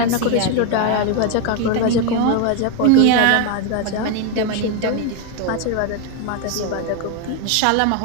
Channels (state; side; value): different; both; correlation 0.01